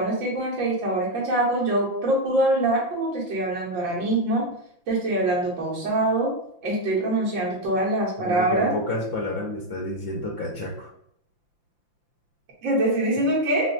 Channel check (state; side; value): late; left; 5.8 ms